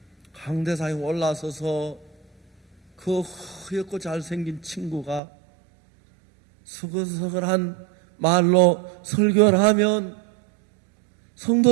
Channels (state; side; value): drops out; left; at 5.2 s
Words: 강대상에 올라서서 그 허옇고 잘생긴 친구가 서글서글한 말로 설교를 하면